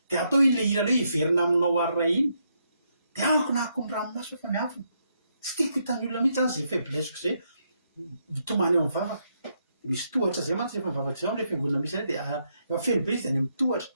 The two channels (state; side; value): inverted; both; correlation -0.78